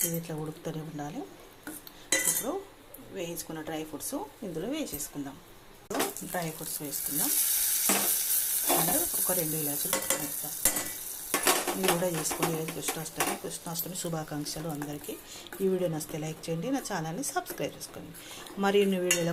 ఇది ఇట్లా ఉడుకుతూనే ఉండాలి. ఇప్పుడు వేయించుకున్న డ్రై ఫ్రూట్స్ ఇందులో వేసేసుకుందాం. డ్రై ఫ్రూట్స్ వేసుకుందాం. అండ్ ఒక 2 ఇలాచీలు వేస్తాం. మీరు కూడా చేసుకోండి. కృష్ణాష్టమి శుభాకాంక్షలు అందరికీ. ఈ వీడియో నచ్చితే లైక్ చేయండి, నా ఛానల్ని సబ్స్క్రైబ్ చేసుకోండి. మరిన్ని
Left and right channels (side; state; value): both; identical; correlation 1.00